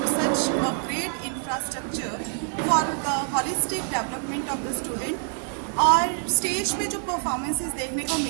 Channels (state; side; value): silent; left; 55 dB below the other